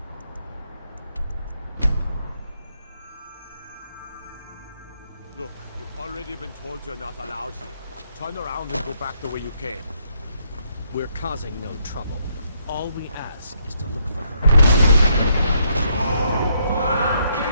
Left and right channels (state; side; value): inverted; both; correlation -0.74